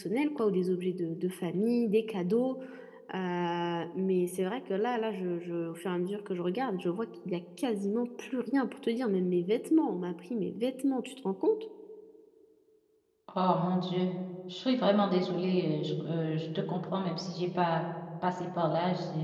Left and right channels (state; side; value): identical; both; correlation 1.00